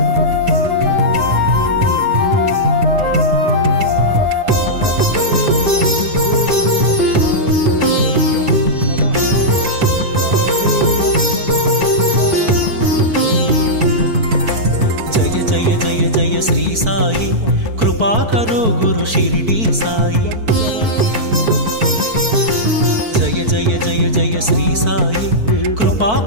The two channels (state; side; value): late; left; 4.5 ms